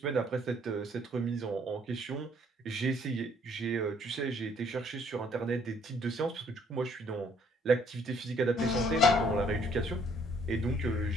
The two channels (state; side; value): normal; both; correlation 0.64